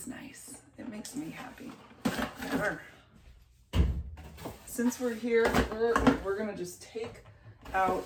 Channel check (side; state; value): both; identical; correlation 1.00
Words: nice. It makes me happy. Since we're here, we're gonna just take out